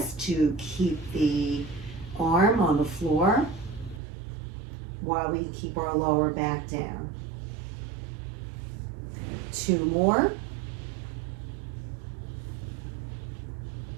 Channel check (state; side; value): drops out; left; at 4.0 s